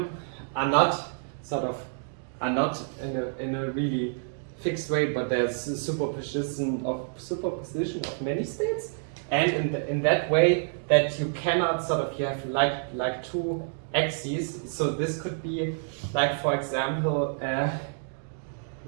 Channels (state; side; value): silent; left; digital silence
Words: are not in a really fixed way, but there's a superposition of many states, and in that way that you cannot you have like 2 axes. So this could be like, for example,